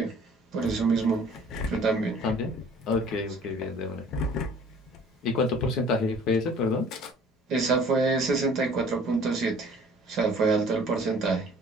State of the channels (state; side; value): normal; both; correlation 0.51